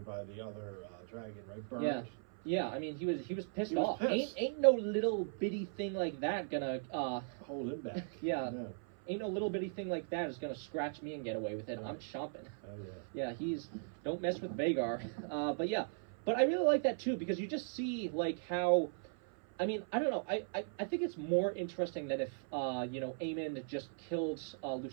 by the other dragon, right? Burned. Yeah. I mean, he was pissed off. Pissed. Ain't no little bitty thing like that gonna hold him back. Yeah. No. Ain't no little bitty thing like that is gonna scratch me and get away with it. Right. I'm chomping. Oh yeah. Yeah, don't mess with Vhagar. But yeah. but I really like that too because you just see like how. I mean, I don't know. I think it's more interesting than if Aemon just killed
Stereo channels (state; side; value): silent; left; 52 dB below the other